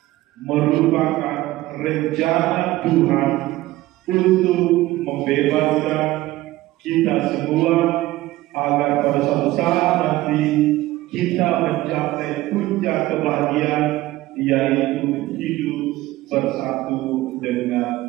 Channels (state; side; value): quieter; left; 17.2 dB